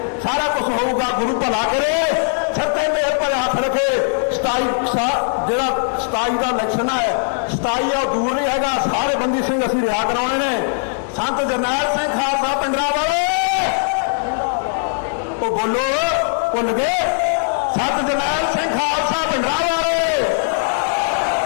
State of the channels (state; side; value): silent; right; digital silence